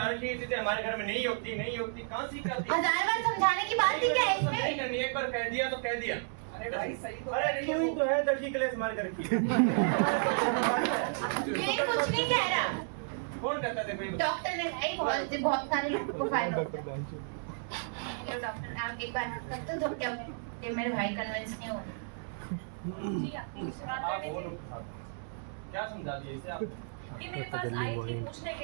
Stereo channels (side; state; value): left; silent; 56 dB below the other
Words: रखी है, चीजें हमारे घर में नहीं होती, नहीं होती, कहाँ सीखाती? 1000 बार समझाने की बात ही क्या है इसमें? नहीं करनी, एक बार कह दिया तो कह दिया। अरे भाई सही तो अरे तू ही तो है दर्जी क्लेस मार कर रखी। ये कुछ नहीं कह रहा। कौन कहता है? देखो डॉक्टर ने भाई बहुत सारे लोगों को फायदा होता है। डॉक्टर आप एक बार डिस्कस तो क्या ये मेरे भाई कन्विंस नहीं हो रहे। जी आपकी मुझसे बात आप करनी वो थी। लोग के साथ क्या समझा दिए इसे आप? ये मेरे पास आई थी पूछने